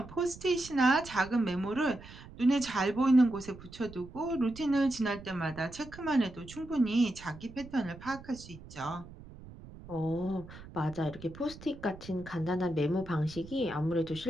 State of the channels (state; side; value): noise; right; rumble, 17 dB below the sound